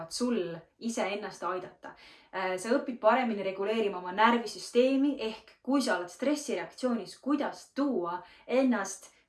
sul iseennast aidata. Sa õpid paremini reguleerima oma närvisüsteemi ehk kui sa oled stressireaktsioonis, kuidas tuua ennast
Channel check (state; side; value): identical; both; correlation 1.00